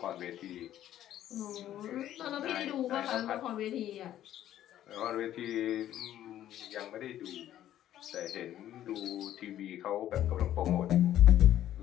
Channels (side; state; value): right; quieter; 12.1 dB